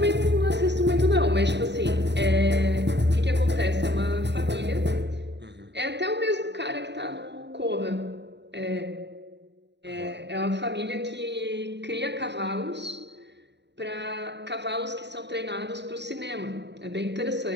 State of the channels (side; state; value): left; late; 0.50 ms